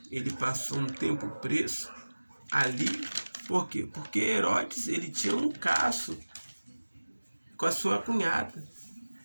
Ele passou um tempo preso ali. Por quê? Porque Herodes, ele tinha um caso com a sua cunhada,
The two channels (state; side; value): inverted; both; correlation -1.00